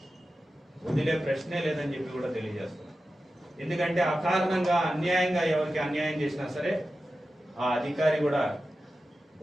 వదిలే ప్రశ్నే లేదని చెప్పి కూడా తెలియజేస్తున్నాం. ఎందుకంటే అకారణంగా అన్యాయంగా ఎవరికి అన్యాయం చేసినా సరే ఆ అధికారి కూడా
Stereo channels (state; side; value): normal; both; correlation 0.93